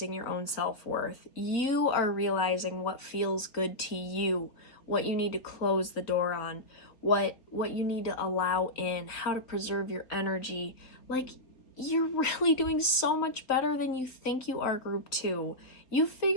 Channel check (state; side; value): late; right; 3.7 ms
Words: your own self-worth. You are realizing what feels good to you, what you need to close the door on, what you need to allow in, how to preserve your energy. Like, you're really doing so much better than you think you are, group 2. You